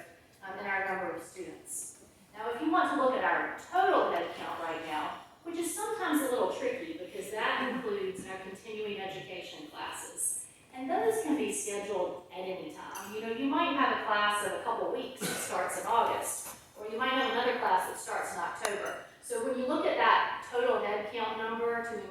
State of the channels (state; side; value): identical; both; correlation 1.00